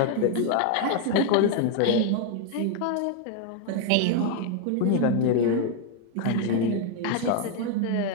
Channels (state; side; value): different; both; correlation 0.01